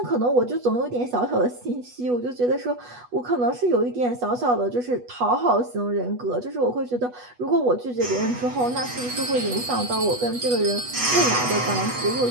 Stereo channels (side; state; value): left; late; 8.2 ms